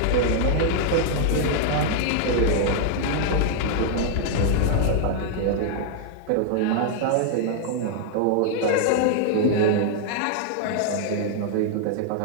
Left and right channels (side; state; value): both; different; correlation 0.00